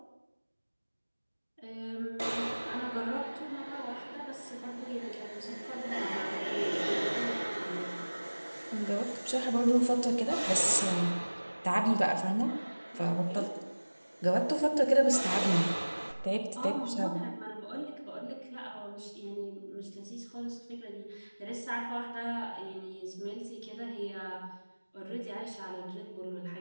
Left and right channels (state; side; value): inverted; both; correlation -1.00